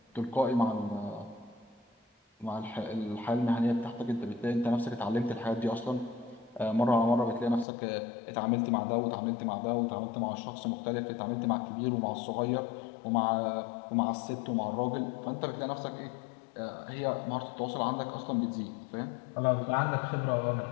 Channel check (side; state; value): right; drops out; at 7.7 s